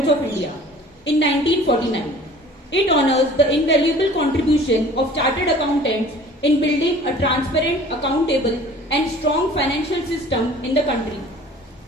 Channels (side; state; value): both; normal; correlation 0.47